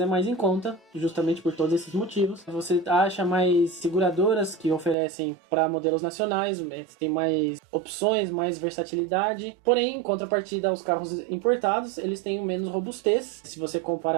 é mais em conta, justamente por todos esses motivos. Você acha mais mais seguradoras que oferecem para modelos nacionais, tem mais opções, mais versatilidade. Porém, em contrapartida, os carros importados, eles têm menos robustez. Se você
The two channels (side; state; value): left; drops out; at 5.0 s